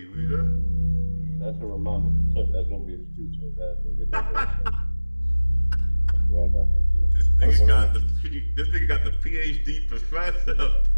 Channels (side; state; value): both; inverted; correlation -1.00